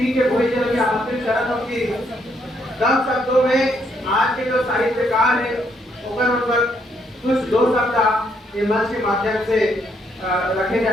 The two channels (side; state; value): both; normal; correlation 0.73